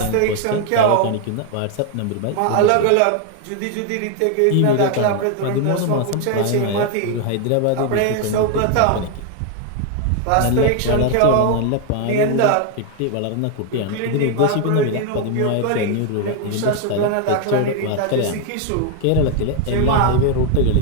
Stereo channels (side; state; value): both; different; correlation 0.01